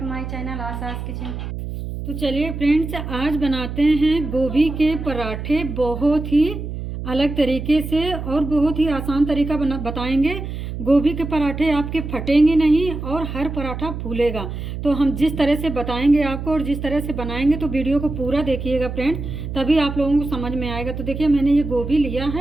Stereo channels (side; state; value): right; noise; hum, 7 dB below the sound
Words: माय चैनल आसास किचन। तो चलिए फ्रेंड्स, आज बनाते हैं गोभी के पराठे। बहुत ही अलग तरीके से और बहुत ही आसान तरीका बताएंगे। गोभी के पराठे आपके फटेंगे नहीं और हर पराठा फूलेगा। तो हम जिस तरह से बताएंगे आपको और जिस तरह से बनाएंगे, तो वीडियो को पूरा देखिएगा फ्रेंड्स, तभी आप लोगों को समझ में आएगा। तो देखिए, मैंने ये गोभी लिया